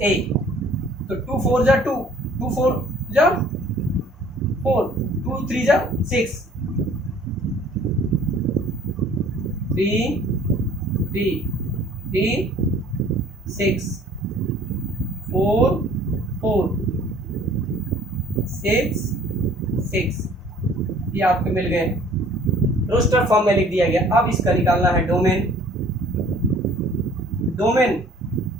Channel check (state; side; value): normal; both; correlation 0.54